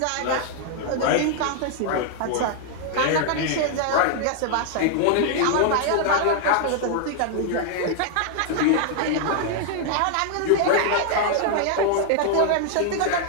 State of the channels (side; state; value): both; different; correlation 0.00